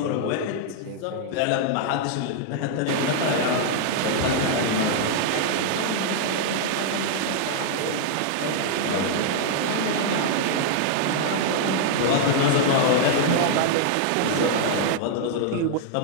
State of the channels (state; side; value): different; both; correlation -0.01